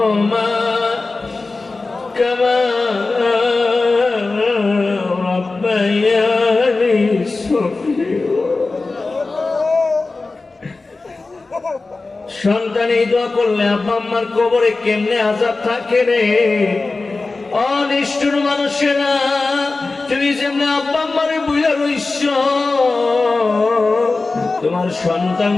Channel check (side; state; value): right; quieter; 3.6 dB